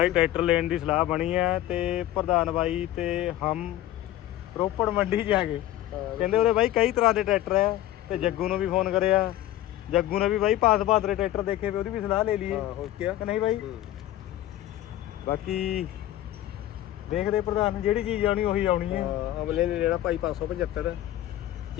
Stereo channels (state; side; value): quieter; right; 13.8 dB